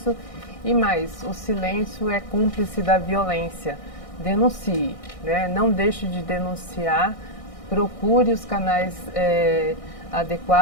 E mais, o silêncio é cúmplice da violência. Denuncie, né? Não deixe de denunciar, procure os canais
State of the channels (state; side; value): late; right; 1.6 ms